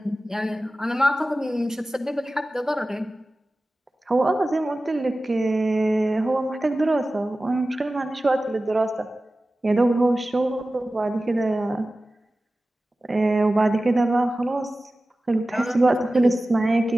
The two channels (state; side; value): normal; both; correlation 0.96